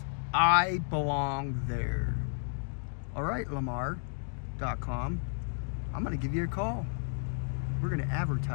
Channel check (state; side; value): silent; right; digital silence